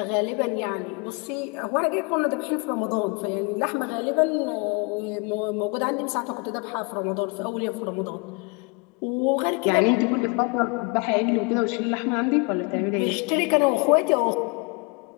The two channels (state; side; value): quieter; right; 31.6 dB